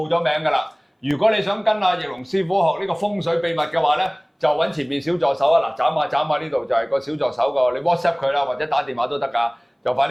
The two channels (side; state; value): both; identical; correlation 1.00